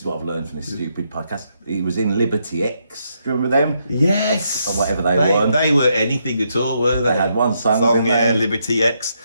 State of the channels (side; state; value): both; inverted; correlation -0.78